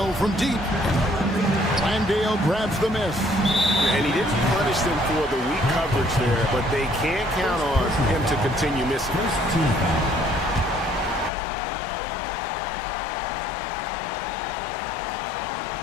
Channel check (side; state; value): right; drops out; at 11.3 s